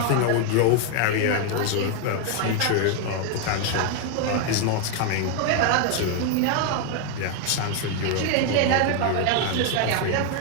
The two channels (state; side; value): different; both; correlation 0.01